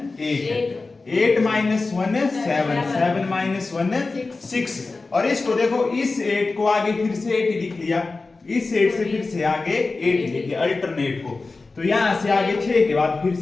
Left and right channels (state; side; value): quieter; right; 3.7 dB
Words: 8, 8 - 1 7, 7 - 1 6। और इसको देखो, इस 8 को आगे फिर से 8 लिख लिया, इस 8 से फिर से आगे 8 लिख लिया अल्टरनेट को। तो यहां से आगे 6 के बाद फिर